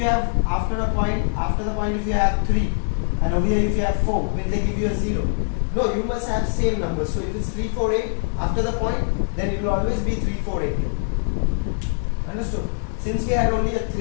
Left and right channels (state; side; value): silent; right; 64 dB below the other